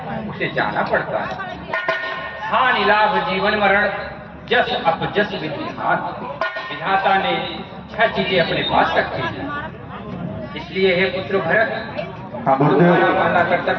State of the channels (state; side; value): identical; both; correlation 1.00